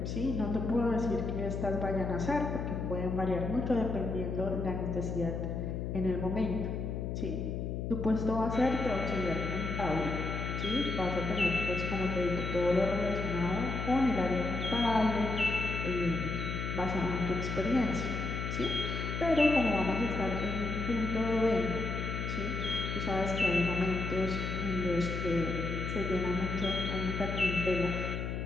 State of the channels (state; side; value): noise; left; hum, 3 dB below the sound